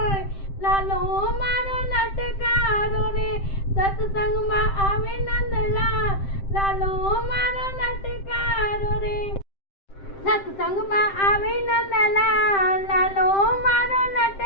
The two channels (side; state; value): right; late; 7.6 ms